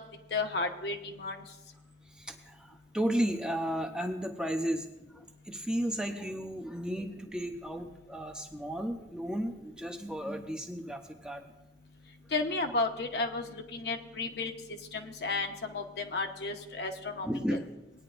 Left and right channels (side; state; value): both; normal; correlation 0.46